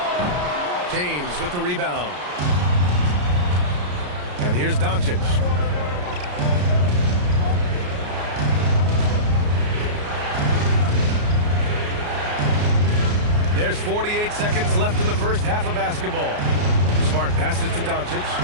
James with the rebound. And here's Doncic. There's 48 seconds left in the first half of basketball. Smart passes to Doncic.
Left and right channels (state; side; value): late; left; 34 ms